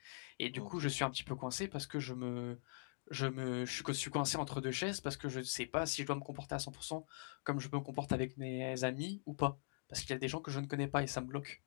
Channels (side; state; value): right; silent; digital silence